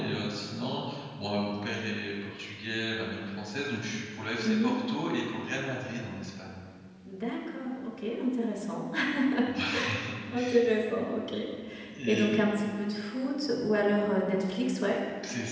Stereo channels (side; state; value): both; identical; correlation 1.00